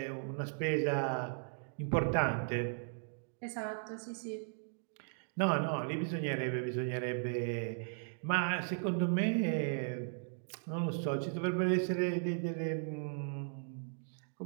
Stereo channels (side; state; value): left; silent; digital silence